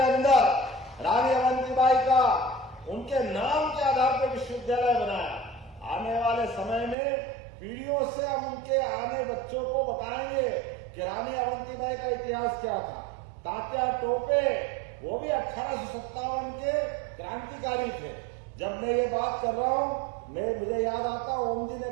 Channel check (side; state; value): left; drops out; at 7.0 s